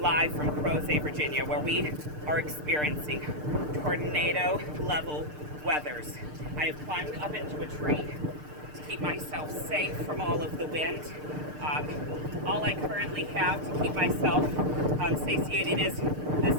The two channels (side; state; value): left; late; 6.6 ms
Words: from Crozet, Virginia, where we are experiencing tornado-level weathers. I have climbed up into a tree to keep myself safe from all of the wind. All I currently have to keep myself satiated is this